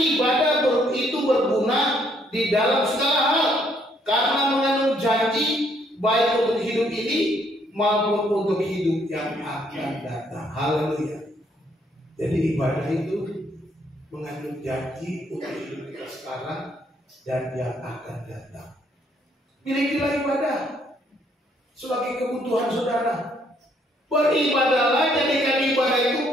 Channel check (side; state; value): both; normal; correlation 0.68